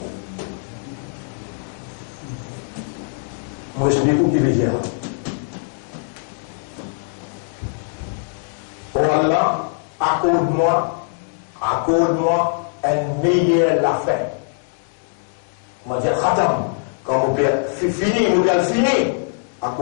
Moi, je explique qui veut dire. Oh Allah, accorde-moi un meilleur la fin. On va dire khatam. Quand mon père fini,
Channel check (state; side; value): silent; right; digital silence